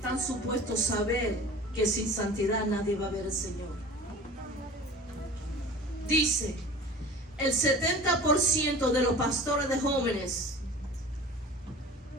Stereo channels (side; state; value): both; normal; correlation 0.39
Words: supuestos saber que sin santidad nadie va a ver al Señor. Dice, el 70% de los pastores de jóvenes